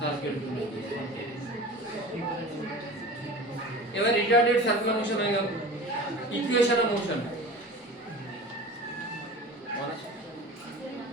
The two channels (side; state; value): both; normal; correlation 0.37